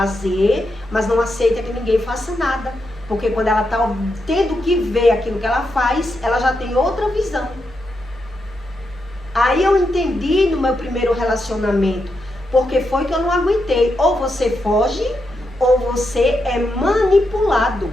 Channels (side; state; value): both; normal; correlation 0.84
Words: mas não aceita que ninguém faça nada. Porque quando ela está tendo que ver aquilo que ela faz, ela já tem outra visão. Aí eu entendi no meu primeiro relacionamento, porque foi que eu não aguentei. Ou você foge, ou você é manipulado,